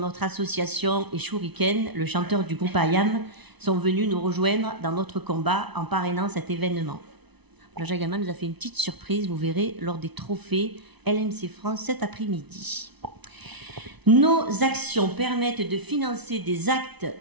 association, et Shuriken, le chanteur du groupe IAM, sont venus nous rejoindre dans notre combat en parrainant cet événement. Jean-Jacques Goldman nous a fait une petite surprise, vous verrez, lors des trophées LMC France cet après-midi. Nos actions permettent de financer des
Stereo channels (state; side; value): late; left; 0.99 ms